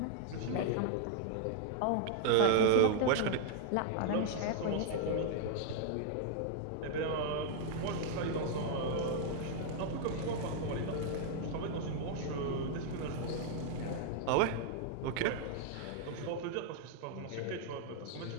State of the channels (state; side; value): different; both; correlation 0.00